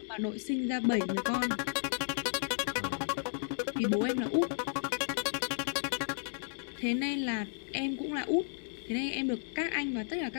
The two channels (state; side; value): silent; right; digital silence